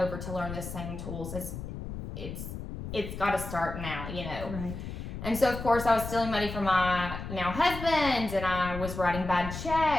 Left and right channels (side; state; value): left; noise; rumble, 8 dB below the sound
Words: to learn the same tools, it's got to start now, you know. Right. And so, of course, I was stealing money from my now husband, and I was writing bad